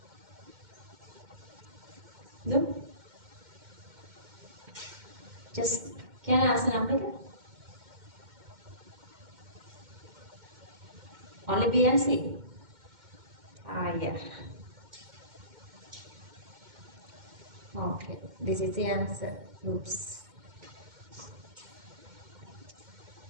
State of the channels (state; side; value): late; left; 2.1 ms